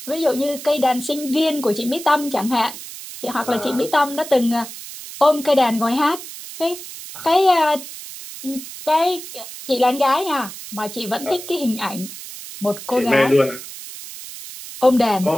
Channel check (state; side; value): noise; right; hiss, 12 dB below the sound